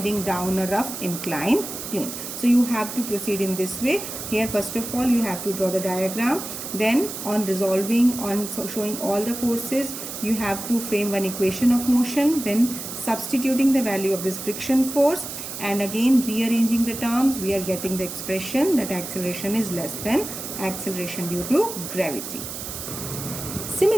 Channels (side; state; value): right; noise; hiss, 8 dB below the sound